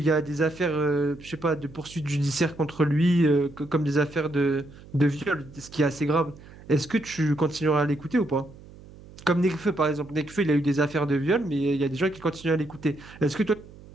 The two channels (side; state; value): right; noise; hum, 20 dB below the sound